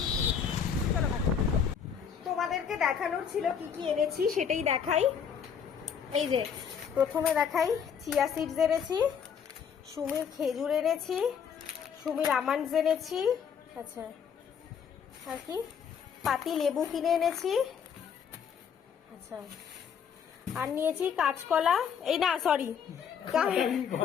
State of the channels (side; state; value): right; quieter; 7.4 dB